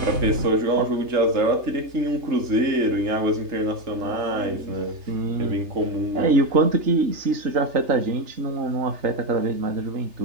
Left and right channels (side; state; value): left; late; 3.3 ms